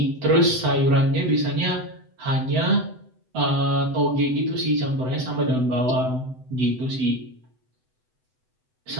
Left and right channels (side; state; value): left; late; 7.9 ms